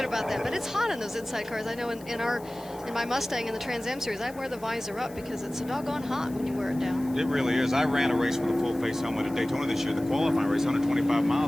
about that, but it's hot in those inside cars. I know in my Mustang in the Trans Am series, I wear the visor up because it's so doggone hot when you wear it down. It really is. I ran a race with a full face helmet at Daytona this year, the qualifying race, 125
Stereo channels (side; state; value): left; noise; hiss, 22 dB below the sound